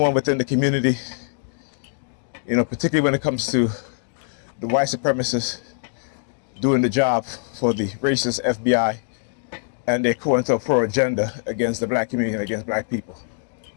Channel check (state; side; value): silent; right; digital silence